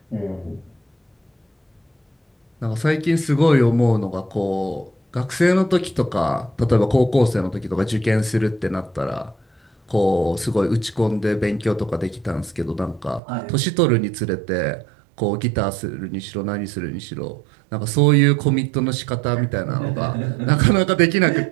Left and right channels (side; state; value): left; drops out; at 13.2 s